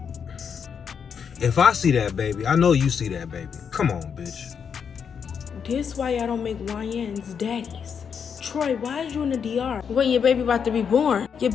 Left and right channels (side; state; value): right; quieter; 6.9 dB